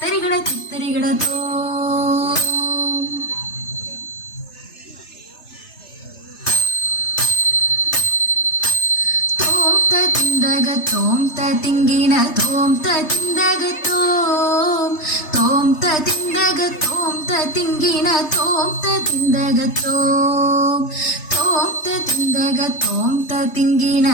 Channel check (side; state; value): right; late; 3.3 ms